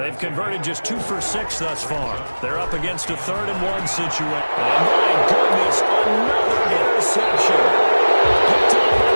converted just 2 for 6 thus far. They're up against a 3rd and 1 situation. And my goodness, another interception. Picked up by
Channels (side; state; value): both; inverted; correlation -1.00